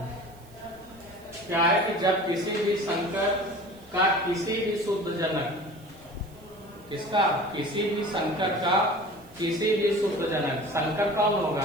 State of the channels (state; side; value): noise; right; hiss, 27 dB below the sound